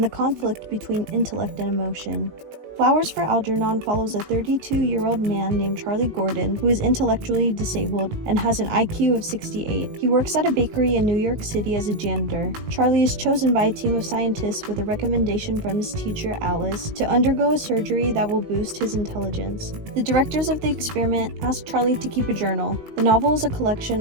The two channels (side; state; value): left; late; 19 ms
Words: the conflict between intellect and emotion. Flowers for Algernon follows a 32-year-old man named Charlie Gordon who is intellectually disabled and has an IQ of 68. He works at a bakery in New York City as a janitor. Charlie is chosen by a team of scientists with a recommendation from his teacher Alice to undergo a surgery that will boost his intelligence. The directors of the experiment ask Charlie to keep a journal. The novel is a collection